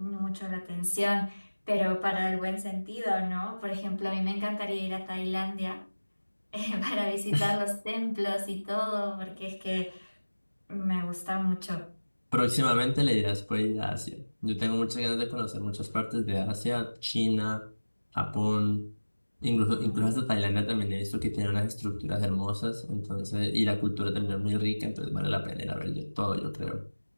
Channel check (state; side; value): inverted; both; correlation -1.00